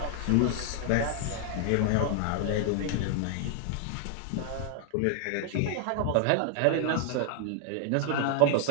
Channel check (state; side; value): different; both; correlation 0.00